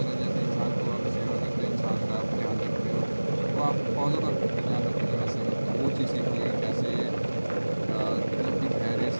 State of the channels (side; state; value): both; inverted; correlation -1.00